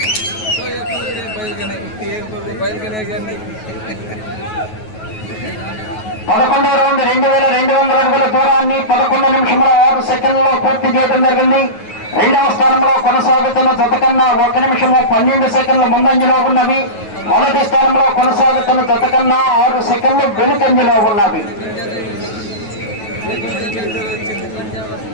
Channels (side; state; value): right; late; 9.3 ms